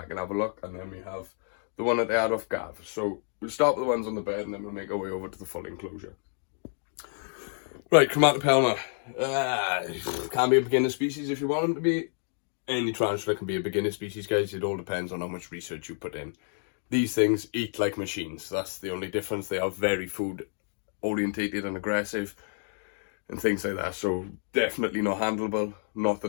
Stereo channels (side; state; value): right; silent; 57 dB below the other